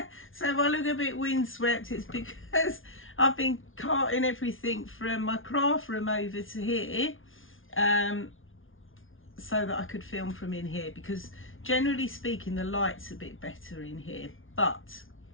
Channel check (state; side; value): late; right; 0.58 ms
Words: So if I look a bit windswept, it's because I've been carting everything from my craft room over to here, so that I could film from in here, because generally speaking the light's a bit better in here, but